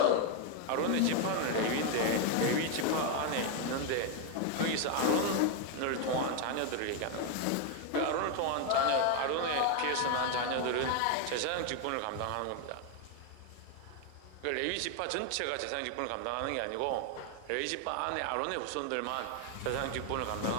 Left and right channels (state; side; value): different; both; correlation 0.01